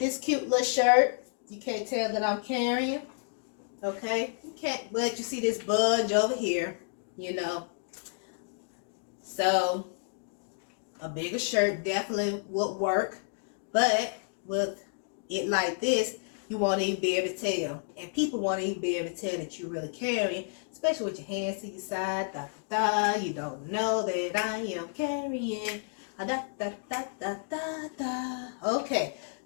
cute little shirt, you can't tell that I'm carrying. Okay, you can't, but you see this budge over here, you know. So a bigger shirt definitely would work, but with it like this, You want to even be able to tell. And people want to even be able to tell that you're really carrying, especially with your hands to your side. Da, da, da. You don't know that I am carrying. Da, da, da, da, da, da. Okay,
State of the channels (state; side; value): silent; right; digital silence